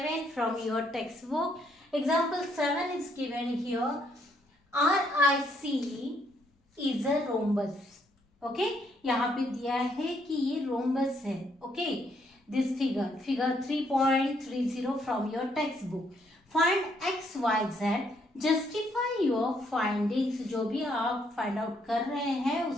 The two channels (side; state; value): both; normal; correlation 0.72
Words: from your textbook. Example 7 is given here. RIC is a rhombus. Okay, यहाँ पे दिया है कि ये rhombus है. Okay, this figure 3.30 from your textbook. Find x, y, z. Justify your findings. जो भी आप फाइंड आउट कर रहे हैं